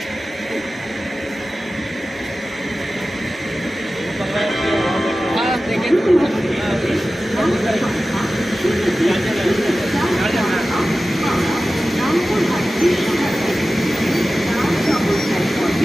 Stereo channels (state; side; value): normal; both; correlation 0.95